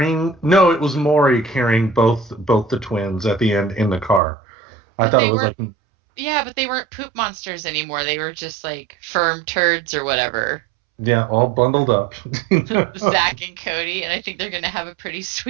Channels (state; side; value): drops out; left; at 4.2 s